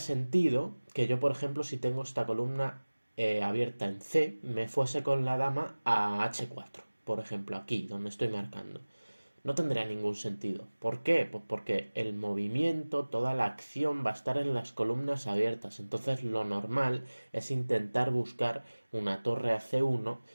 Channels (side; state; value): both; inverted; correlation -1.00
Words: que yo, por ejemplo, si tengo esta columna abierta en C, me fuese con la dama a H4, por ejemplo, aquí, donde estoy marcando. No tendría ningún sentido. ¿Por qué? Pues porque el movimiento, toda la acción va a estar en las columnas abiertas. Entonces lo normal es intentar buscar una torre a C1